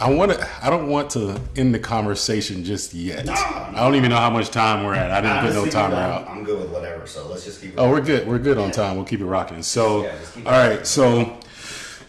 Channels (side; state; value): both; identical; correlation 1.00